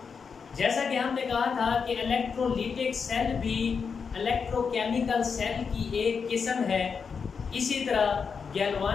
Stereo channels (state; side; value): quieter; right; 5.8 dB